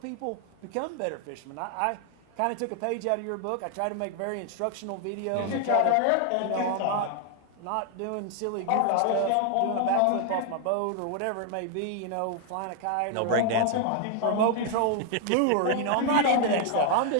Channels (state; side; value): different; both; correlation 0.00